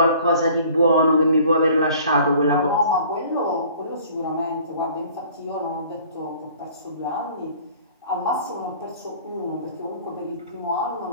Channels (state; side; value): inverted; both; correlation -0.52